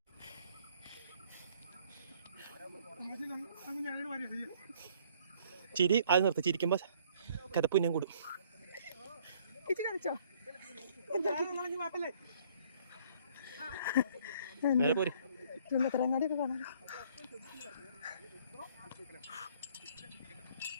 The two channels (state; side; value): inverted; both; correlation -0.60